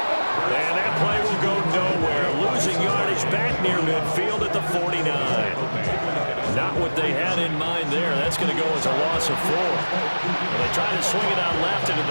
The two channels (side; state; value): both; inverted; correlation -1.00